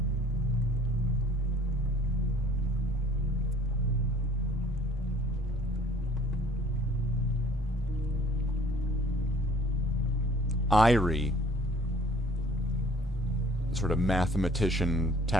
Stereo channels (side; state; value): both; normal; correlation 0.53